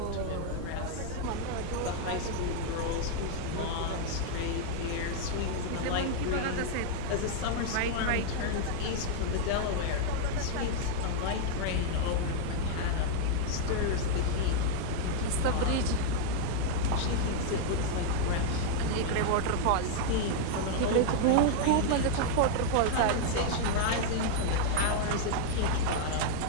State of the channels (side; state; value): both; different; correlation 0.00